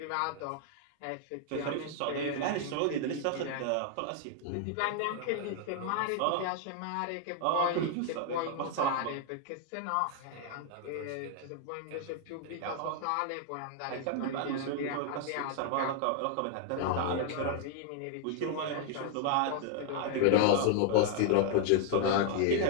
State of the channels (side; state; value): both; different; correlation 0.00